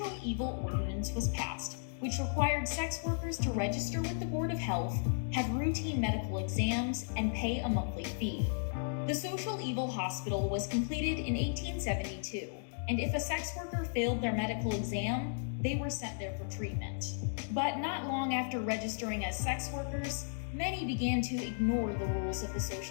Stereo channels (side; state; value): right; silent; digital silence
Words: Evil Ordinance was passed, which required sex workers to register with the Board of Health, have routine medical exams, and pay a monthly fee. The Social Evil Hospital was completed in 1872, and if a sex worker failed their medical exam, they were sent there for treatment. But not long after registering as sex workers, many began to ignore the rules of the